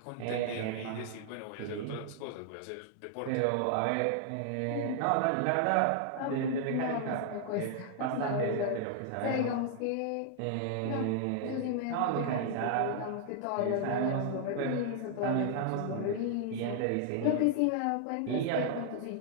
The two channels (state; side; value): different; both; correlation 0.00